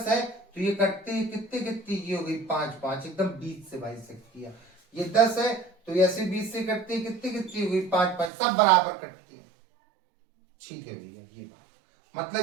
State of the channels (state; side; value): drops out; left; at 8.3 s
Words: है, तो ये कटते हैं कितने कितने, ये हो गई 5 5, एकदम बीच से भाई सकती है। ये 10 है तो ऐसे बीच से कटती है, कितनी कितनी हो गई 5 5, सब बराबर कटती है। ठीक है भैया, ये बात